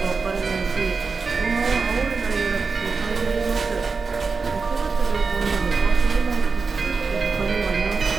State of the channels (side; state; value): left; quieter; 4.6 dB